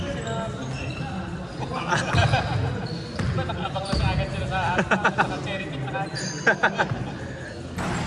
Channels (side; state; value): both; identical; correlation 1.00